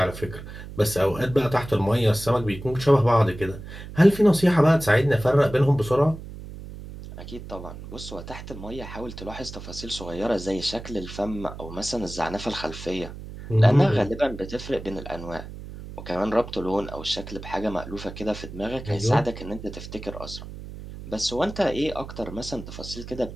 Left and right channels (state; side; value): noise; right; hum, 12 dB below the sound